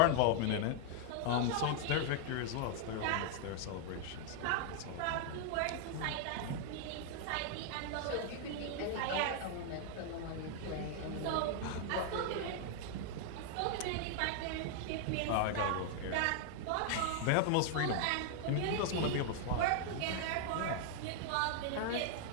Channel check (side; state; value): both; different; correlation 0.00